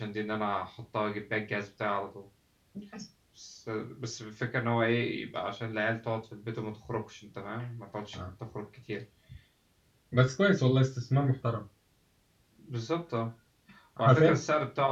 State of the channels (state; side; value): identical; both; correlation 1.00